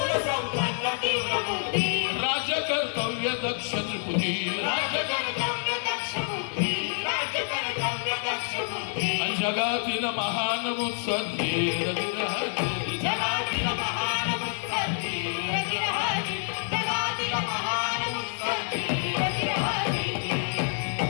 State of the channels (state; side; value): silent; right; 60 dB below the other